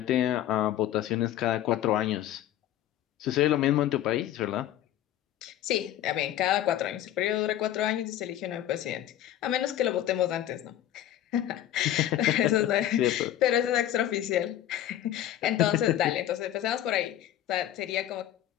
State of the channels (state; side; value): quieter; right; 12.2 dB